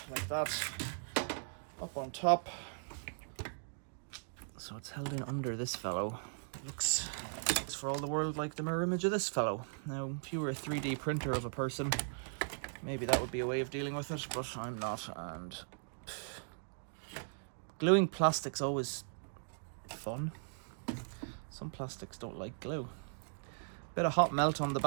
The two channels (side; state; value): left; silent; digital silence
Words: like that, up on top. So it's held in under this fellow. It looks for all the world like the mirror image of this fellow. Now, if you were a 3D printer of a person, maybe that would be a way of dealing with it, but I'm not, and gluing plastic's always fun. Some plastics don't like glue. Bit of hot melt on the